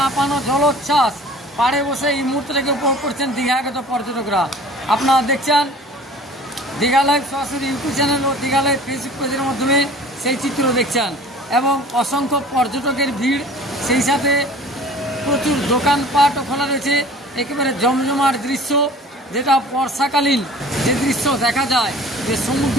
জলোচ্ছ্বাস পাড়ে বসে এই মুহূর্তটাকে উপভোগ করছেন দীঘাগত পর্যটকরা। আপনারা দেখছেন দীঘা লাইভ সরাসরি ইউটিউব চ্যানেল ও দীঘা লাইভ ফেসবুক পেজের মাধ্যমে সেই চিত্র দেখছেন এবং অসংখ্য পর্যটকের ভিড়, সেই সাথে প্রচুর দোকানপাটও খোলা রয়েছে। একেবারে জমজমার দৃশ্য, যেটা বর্ষাকালীন যে দৃশ্য দেখা যায়, যে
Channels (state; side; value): normal; both; correlation 0.46